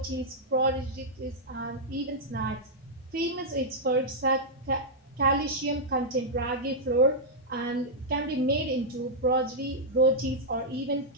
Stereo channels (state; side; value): normal; both; correlation -0.06